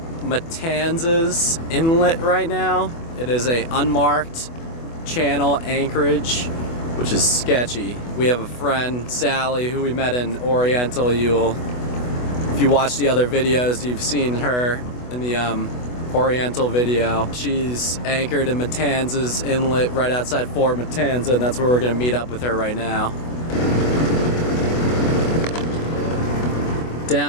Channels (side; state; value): right; late; 24 ms